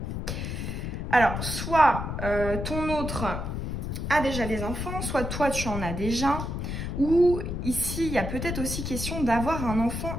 Alors, soit ton autre a déjà des enfants, soit toi, tu en as déjà, ou ici, il y a peut-être aussi question d'avoir un enfant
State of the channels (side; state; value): left; noise; rumble, 4 dB below the sound